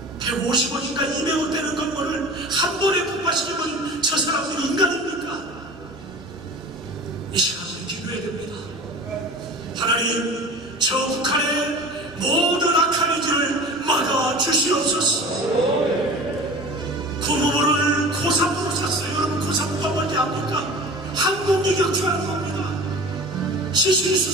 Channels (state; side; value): normal; both; correlation 0.38